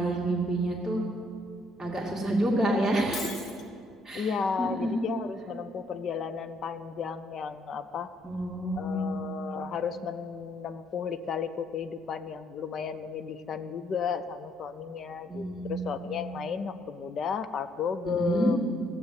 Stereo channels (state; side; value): normal; both; correlation 0.70